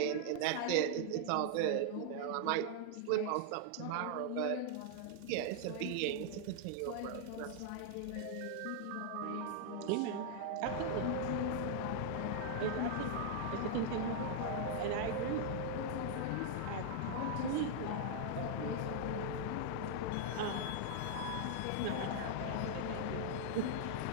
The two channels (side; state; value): both; different; correlation -0.01